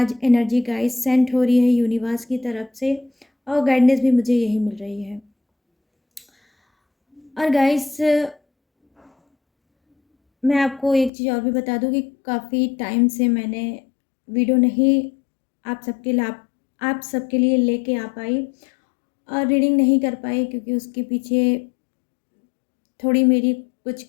एनर्जी गाइस सेंड हो रही है यूनिवर्स की तरफ से, और गाइडेंस भी मुझे यही मिल रही है। और गाइस मैं आपको एक चीज़ और भी बता दूं कि काफ़ी टाइम से मैंने वीडियो नहीं आप सबके लिए लेके आ पाई और रीडिंग नहीं कर पाई, क्योंकि उसके पीछे थोड़ी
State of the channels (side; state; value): right; drops out; at 11.1 s